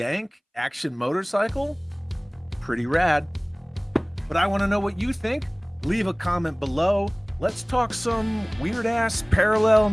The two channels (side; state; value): both; identical; correlation 1.00